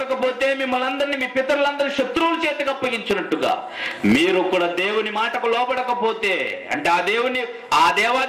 మిమ్మల్ని అందరినీ, మీ పితరులందరూ శత్రువుల చేతికి అప్పగించినట్టుగా మీరు కూడా దేవుని మాటకు లోబడకపోతే, అంటే ఆ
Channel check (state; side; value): identical; both; correlation 1.00